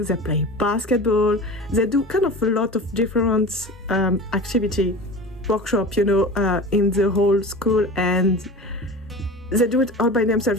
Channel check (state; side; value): normal; both; correlation 0.33